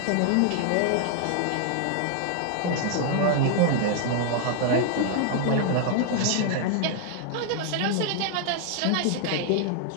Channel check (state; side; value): different; both; correlation 0.00